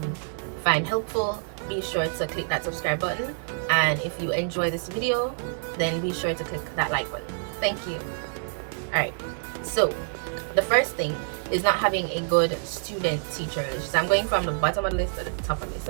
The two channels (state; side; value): silent; left; digital silence